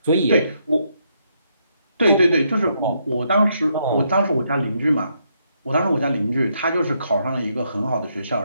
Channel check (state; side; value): inverted; both; correlation -0.76